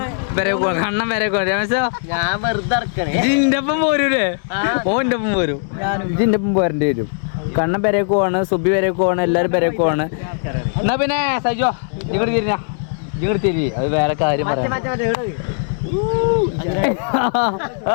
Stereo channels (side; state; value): right; silent; digital silence